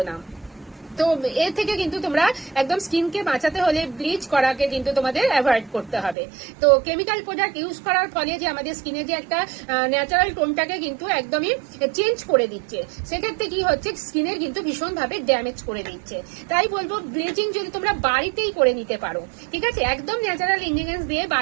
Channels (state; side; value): drops out; left; at 6.2 s